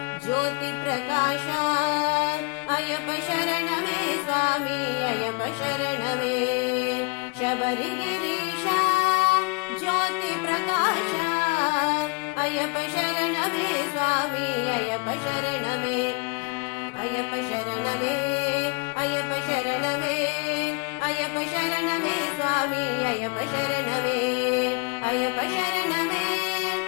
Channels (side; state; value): right; quieter; 31.1 dB